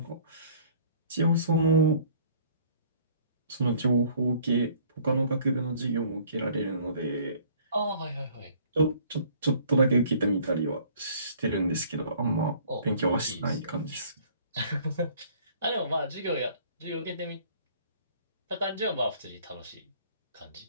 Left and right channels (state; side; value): inverted; both; correlation -0.55